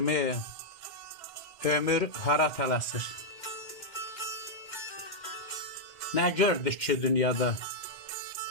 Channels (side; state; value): right; late; 2.1 ms